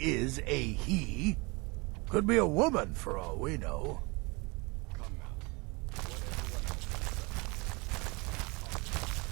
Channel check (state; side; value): quieter; left; 27.3 dB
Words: a he. Could be a woman, for all we know.